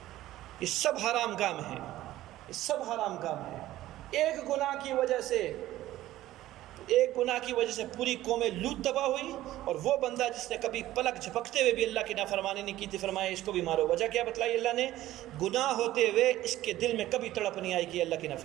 یہ سب حرام کام ہیں، یہ سب حرام کام ہیں۔ ایک گناہ کی وجہ سے پوری قوم لوط تباہ ہوئی، اور وہ بندہ جس نے کبھی پلک جھپکتے ہوئے بھی اللہ کی نافرمانی نہیں کی تھی، فرمایا اس کو بھی مارو۔ وجہ کیا بتلائی اللہ نے؟ گناہ ہوتے ہوئے اس کے دل میں کبھی تڑپ نہیں آئی کہ اللہ کی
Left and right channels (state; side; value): quieter; left; 15.0 dB